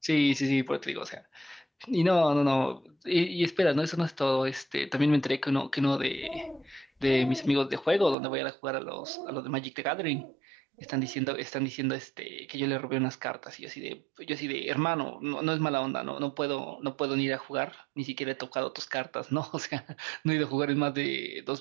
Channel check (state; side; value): drops out; left; at 8.2 s